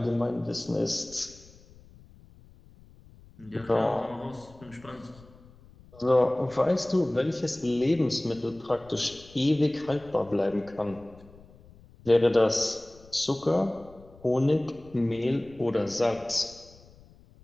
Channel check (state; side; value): noise; left; rumble, 24 dB below the sound